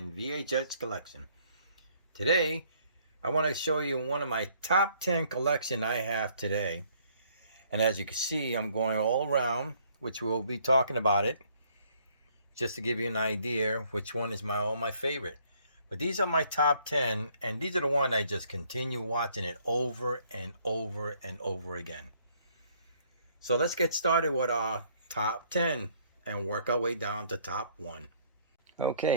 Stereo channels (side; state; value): both; inverted; correlation -0.64